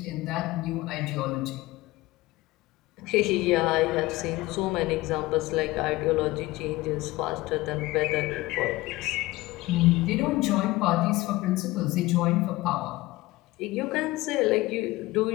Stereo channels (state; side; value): quieter; right; 19.4 dB